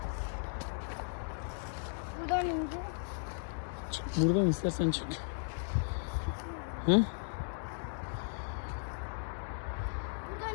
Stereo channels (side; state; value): right; silent; digital silence